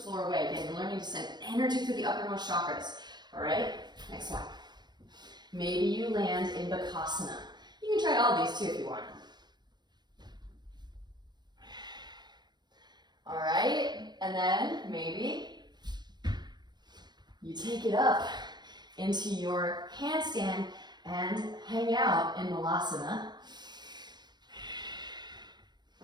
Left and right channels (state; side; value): late; left; 0.21 ms